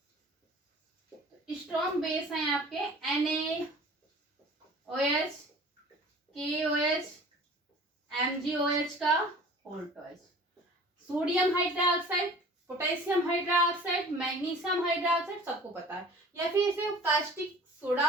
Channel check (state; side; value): normal; both; correlation 0.45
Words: स्ट्रॉन्ग बेस हैं आपके NaOH, KOH, MgOH का होल्टॉइज, sodium hydroxide, potassium hydroxide, magnesium hydroxide, सबको पता है. या फिर इसे कास्टिक